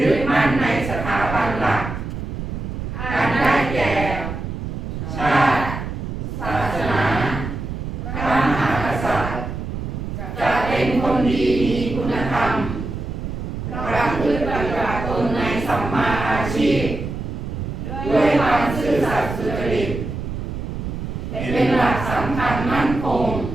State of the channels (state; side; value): noise; right; rumble, 6 dB below the sound